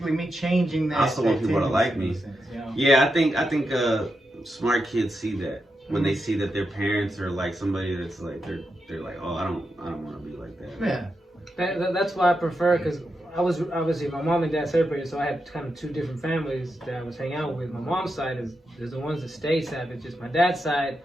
me changing that. I also want that people to like tendency, me. you know? Yeah, I think smart kids see that when they see that their parents are like somebody that's like they're like, oh, I don't want to be like that. Yeah. That's why I prefer, because I was obviously my mom and dad separated, so I had kind of two different families that I was hanging out with. My mom's side is the ones that stayed savages. My dad's side,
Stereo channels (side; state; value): both; normal; correlation 0.86